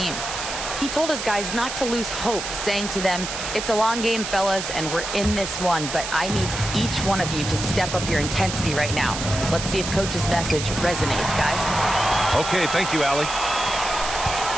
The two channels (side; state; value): right; noise; hiss, 6 dB below the sound